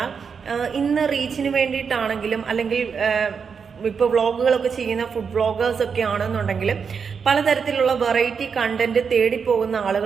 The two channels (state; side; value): quieter; left; 6.1 dB